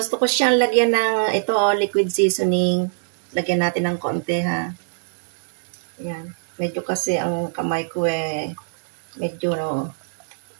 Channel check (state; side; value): silent; left; digital silence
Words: ko siyang lagyan ng ito, liquid seasoning. Lagyan natin ng konti, ha. Yan. Medyo kasi ang kamay ko medyo